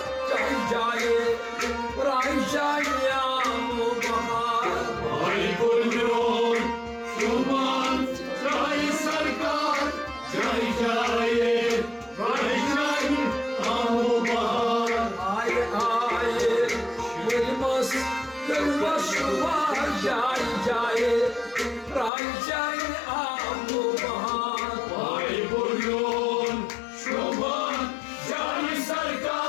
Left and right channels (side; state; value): right; drops out; at 22.1 s